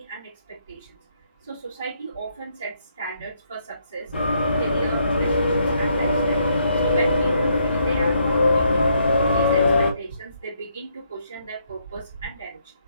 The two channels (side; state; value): both; inverted; correlation -0.74